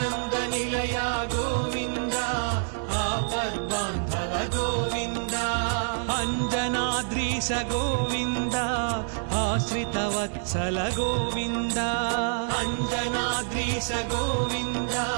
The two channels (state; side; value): silent; left; digital silence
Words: నిలయ గోవింద ఆపద్బాంధవ గోవింద అంజనాద్రీశ గోవింద ఆశ్రిత వత్సల గోవింద అంజనాద్రీశ గోవింద